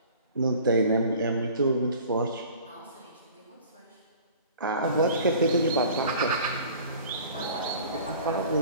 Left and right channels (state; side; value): inverted; both; correlation -0.45